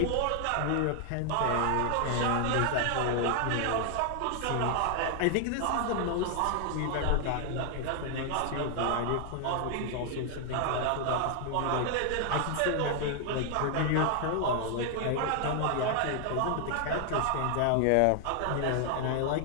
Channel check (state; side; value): different; both; correlation 0.00